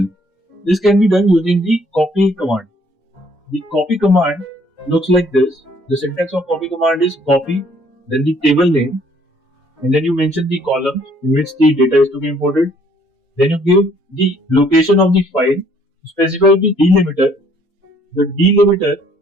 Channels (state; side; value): normal; both; correlation 0.62